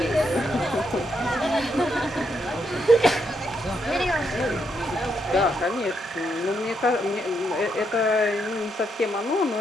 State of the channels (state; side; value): normal; both; correlation 0.78